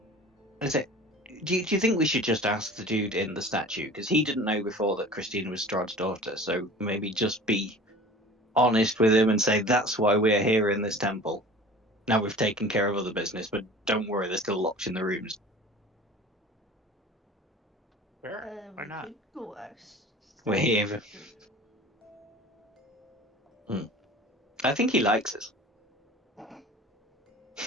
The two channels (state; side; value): normal; both; correlation 0.42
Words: is it? Do you think we should just ask the dude in the statue? Because he didn't know before that Christina was Strahd's daughter, so maybe just be honest with him and say, that's why we're here in this temple. Now we've taken care of other business, but don't worry, they're still locked in the rooms. Sure, why We not? could go ask. We're here. I think he likes us.